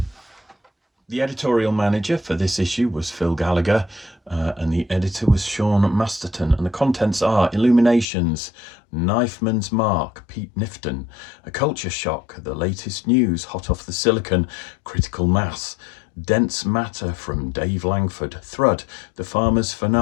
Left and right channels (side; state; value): right; drops out; at 8.1 s